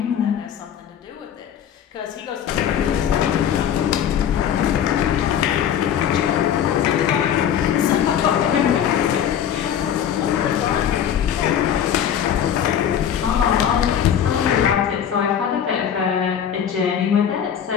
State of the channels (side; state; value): right; quieter; 9.2 dB